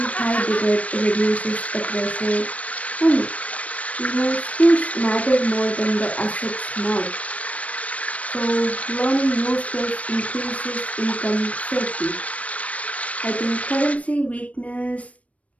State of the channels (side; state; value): right; late; 0.066 ms